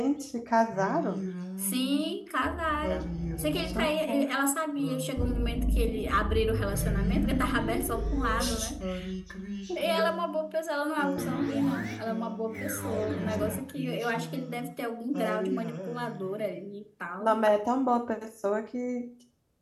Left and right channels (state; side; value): identical; both; correlation 1.00